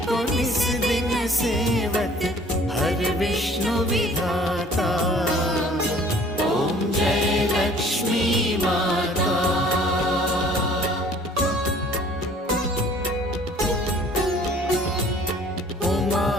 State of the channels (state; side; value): normal; both; correlation 0.53